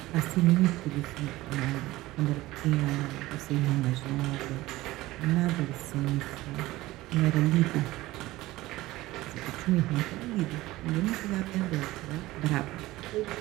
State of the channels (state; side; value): quieter; left; 18.0 dB